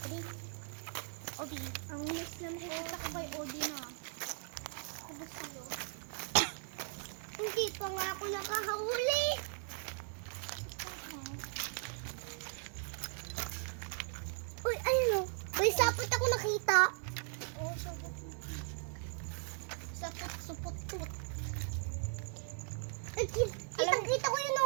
Odi. Ang miss na nakikita ko kay Odi na. Ano sa'yo? Hindi pa nga ako nakahuli. Uy, ayun o. May sapot ako nakita. Oo, sapot. Sapot. Ay, kita ko yun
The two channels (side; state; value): left; silent; 52 dB below the other